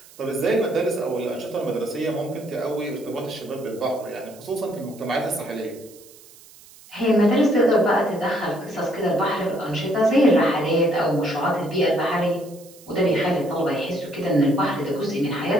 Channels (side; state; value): right; noise; hiss, 23 dB below the sound